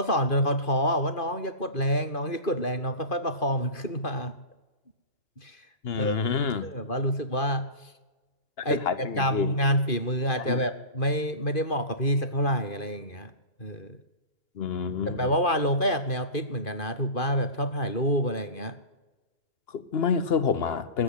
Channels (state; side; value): late; right; 2.5 ms